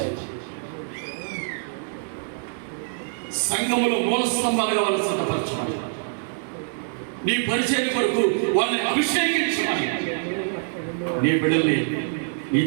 సంఘములో మూల స్తంభాలుగా వాళ్ళని సిద్ధపరచమని, నీ పరిచయం కొరకు వాళ్ళని అభిషేకించమని నీ బిడ్డల్ని నీ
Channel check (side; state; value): left; silent; 62 dB below the other